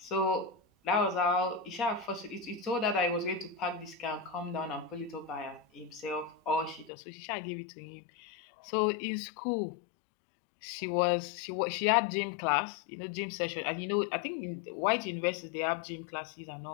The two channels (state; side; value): drops out; right; at 6.9 s